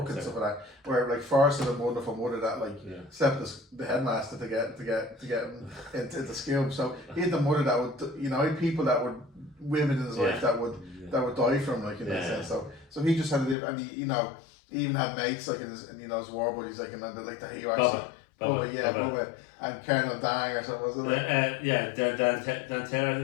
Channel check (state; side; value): drops out; right; at 13.6 s